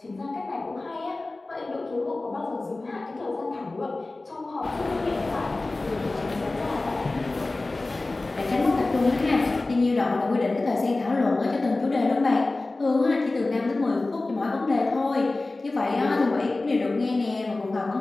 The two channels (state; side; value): quieter; right; 3.1 dB